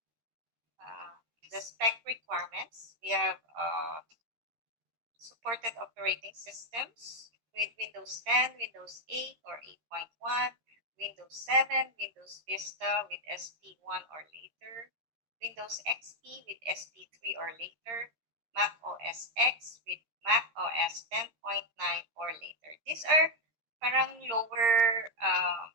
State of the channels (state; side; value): late; left; 13 ms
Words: The spec requirements. We have supported operating systems with Windows 10, Windows 8 or 8.1, Windows 7, Windows Vista with SP1 or later, Windows XP with SP3 or later, Mac OS X with Mac OS 10.9 or later. These are parang lower